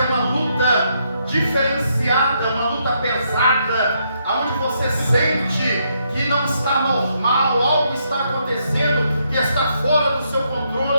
uma luta diferenciada, uma luta pesada, onde você sente que não está normal, algo está acontecendo que está fora do seu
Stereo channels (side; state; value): both; inverted; correlation -0.76